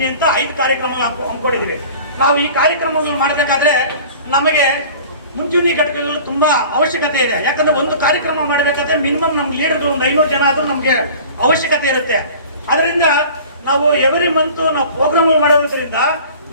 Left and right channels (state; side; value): inverted; both; correlation -0.43